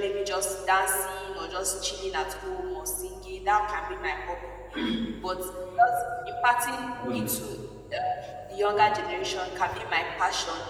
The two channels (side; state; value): both; identical; correlation 1.00